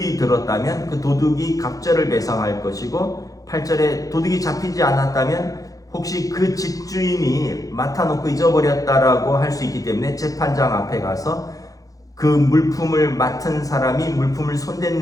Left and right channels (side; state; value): right; late; 0.17 ms